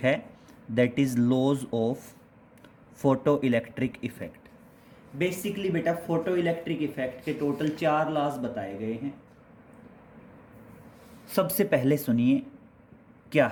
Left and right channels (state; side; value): identical; both; correlation 1.00